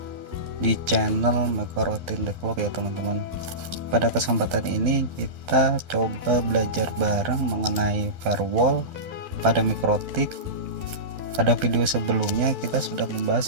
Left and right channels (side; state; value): left; late; 12 ms